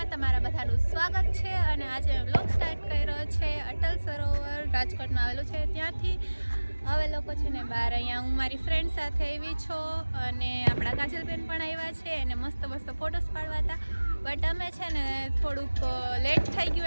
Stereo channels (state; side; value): inverted; both; correlation -1.00